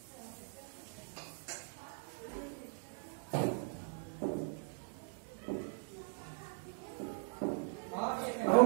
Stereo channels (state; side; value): silent; left; 51 dB below the other